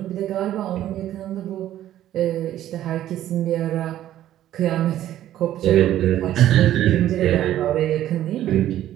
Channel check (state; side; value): quieter; left; 12.6 dB